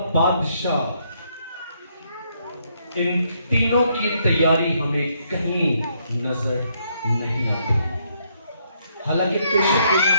बादशाह, इन तीनों की तैयारी हमें कहीं नजर नहीं आती। हालांकि पेशेंट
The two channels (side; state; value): both; inverted; correlation -0.73